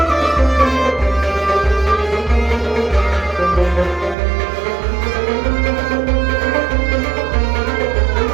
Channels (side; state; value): left; drops out; at 4.2 s